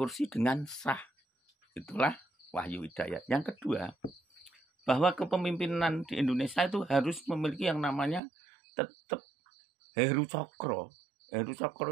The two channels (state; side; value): drops out; left; at 8.2 s